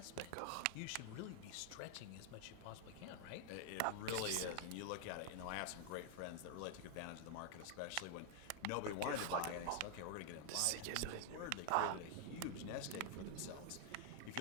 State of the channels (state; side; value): different; both; correlation 0.00